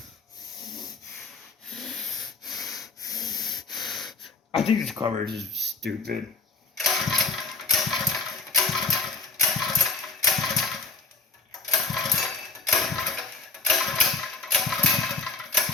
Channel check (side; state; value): right; quieter; 3.9 dB